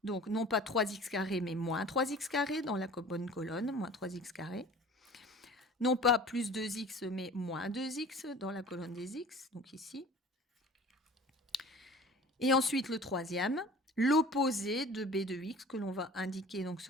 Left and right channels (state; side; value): normal; both; correlation 0.43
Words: Donc, non pas 3x carré, mais moins 3x carré dans la bonne colonne, moins 3x carré. Non pas plus 2x, mais moins 2x dans la colonne des x, donc ici. Et ensuite, le troisième, l'opposé de b de x, que l'on va indiquer donc